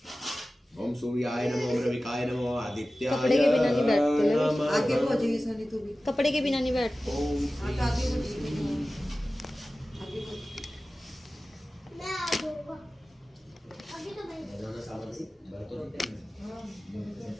ओम सूर्याय नमः, ओम रविकाय नमः, आदित्याय कपड़े के बिना नहीं बैठते लविस, नमः। आगे हो जाइए सोनी तू भी। कपड़े के बिना नहीं बैठते। ओम हाँ तो आगे हो जाइए। मैं आ जाऊंगा अभी तो भाई। रोजाना सावन से बर्तन होते हैं।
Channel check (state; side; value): normal; both; correlation 0.96